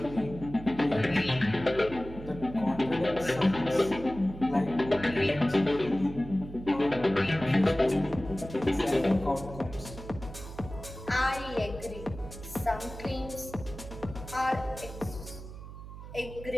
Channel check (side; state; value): right; noise; hum, 13 dB below the sound